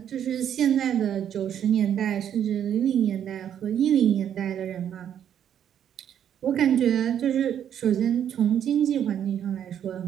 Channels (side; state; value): left; quieter; 9.5 dB